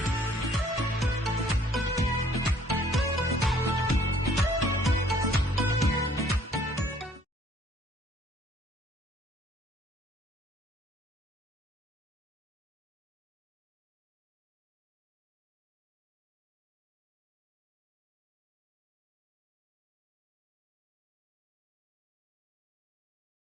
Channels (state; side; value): normal; both; correlation 0.59